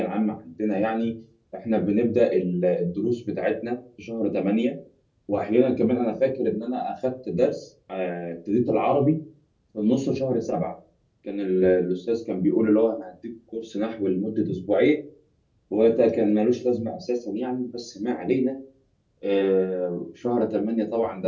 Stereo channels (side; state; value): both; identical; correlation 1.00